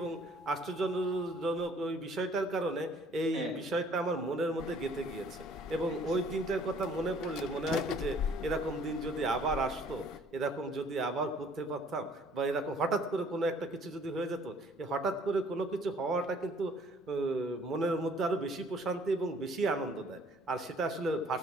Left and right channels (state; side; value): normal; both; correlation 0.57